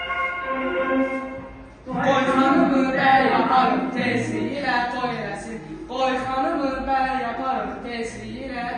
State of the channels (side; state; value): both; identical; correlation 1.00